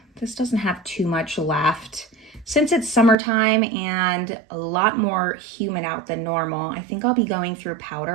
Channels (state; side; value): drops out; left; at 3.2 s